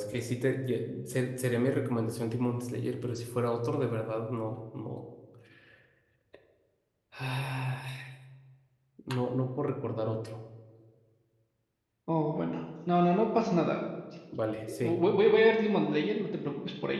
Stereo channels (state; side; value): identical; both; correlation 1.00